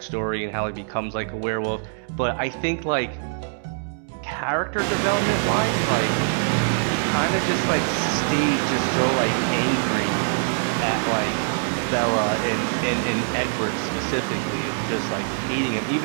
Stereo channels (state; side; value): silent; left; digital silence